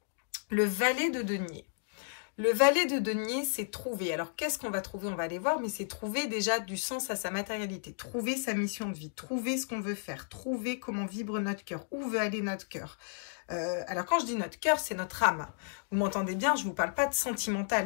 Le valet de denier. Le valet de denier, c'est trouver. Alors, qu'est-ce qu'on va trouver? On va aller voir, mais c'est trouver déjà du sens à sa matérialité. Trouver sa mission de vie. Trouver ce qu'on veut faire. Trouver comment vibre notre cœur. Où veut aller notre cœur. Alors, quand je dis notre cœur, c'est notre âme. Vous m'entendez bien, je vous parle pas de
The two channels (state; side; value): silent; right; digital silence